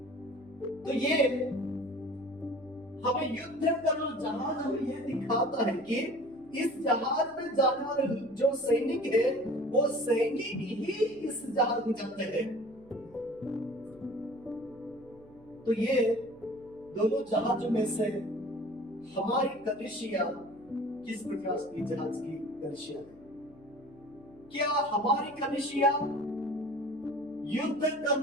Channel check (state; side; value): noise; right; hum, 25 dB below the sound